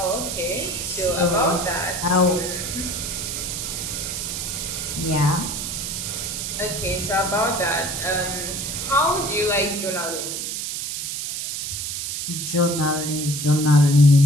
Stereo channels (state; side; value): noise; right; hiss, 4 dB below the sound